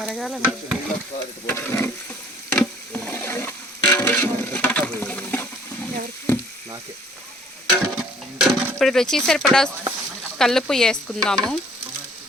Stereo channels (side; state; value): both; normal; correlation 0.57